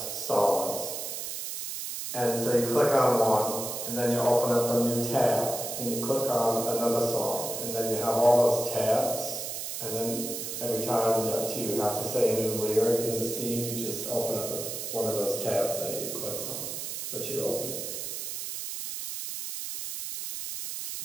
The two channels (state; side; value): noise; right; hiss, 5 dB below the sound